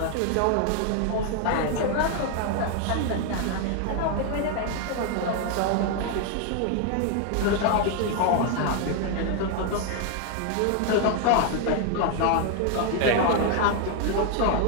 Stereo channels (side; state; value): both; different; correlation 0.00